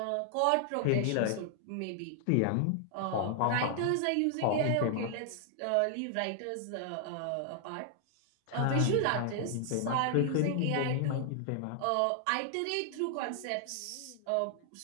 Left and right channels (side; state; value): both; different; correlation 0.00